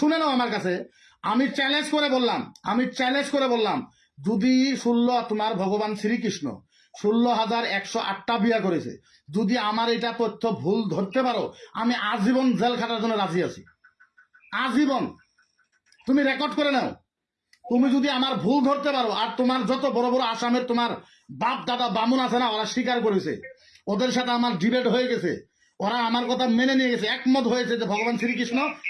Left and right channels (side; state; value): both; identical; correlation 1.00